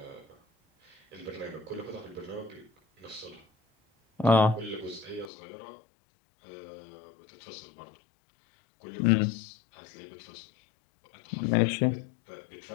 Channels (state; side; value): drops out; right; at 5.3 s